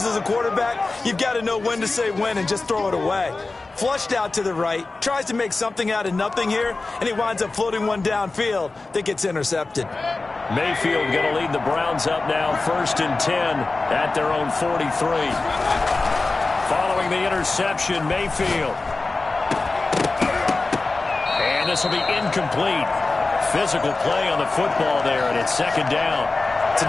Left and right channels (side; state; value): right; quieter; 3.5 dB